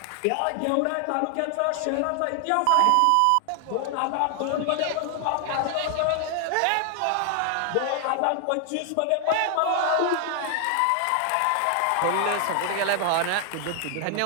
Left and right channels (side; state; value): both; different; correlation 0.00